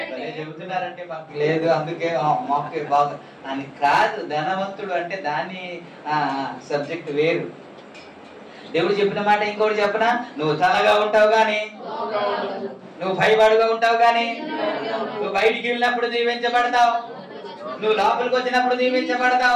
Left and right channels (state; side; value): identical; both; correlation 1.00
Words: చెబుతున్నారంటే మాకు లేదు, అందుకే మాకు బాగా అని కాదు. ధనవంతుడు అంటే దాని సబ్జెక్ట్ వేరు. దేవుడు చెప్పిన మాట ఇంకోటి చెప్పనా? నువ్వు తలగా ఉంటావు గాని, నువ్వు భయపడుగా ఉంటావు గాని, నువ్వు బయటికి వెళ్ళినప్పుడు దీవించబడతావు, నువ్వు లోపలికి వచ్చినప్పుడు